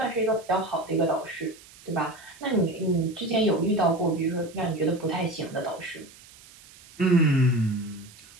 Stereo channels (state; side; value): noise; right; hiss, 22 dB below the sound